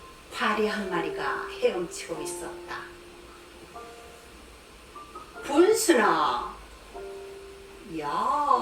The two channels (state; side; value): identical; both; correlation 1.00